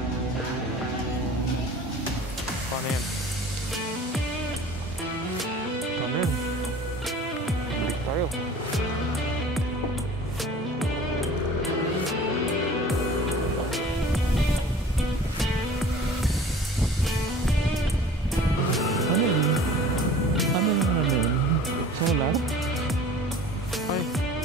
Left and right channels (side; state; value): both; normal; correlation 0.45